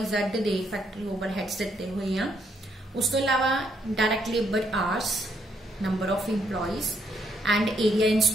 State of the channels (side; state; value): both; normal; correlation 0.73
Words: दे फैक्ट्री ओवरहेड्स दिते हुए हैं। उस तो अलावा direct labour hours, number of employees and area in